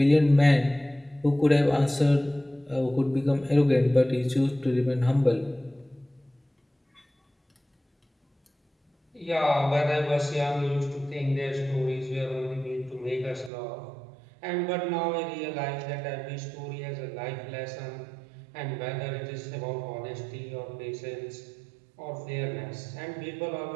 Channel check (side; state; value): left; drops out; at 13.5 s